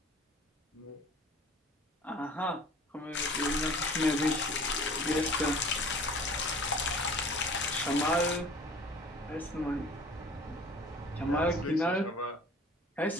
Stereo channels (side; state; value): both; normal; correlation 0.47